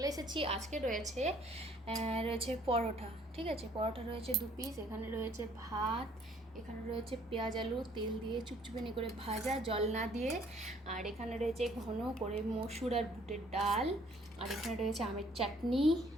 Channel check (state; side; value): normal; both; correlation 0.60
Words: এসেছি। আজকে রয়েছে পরোটা, ঠিক আছে, পরোটা রয়েছে 2 পিস। এখানে রয়েছে ভাত, এখানে রয়েছে পেঁয়াজ আলু তেল দিয়ে চুপচুপানি করে ভাজা, জল না দিয়ে। আর এখানে রয়েছে ঘন করে মসুর আর বুটের ডাল। আর এখানে রয়েছে আমের চাটনি,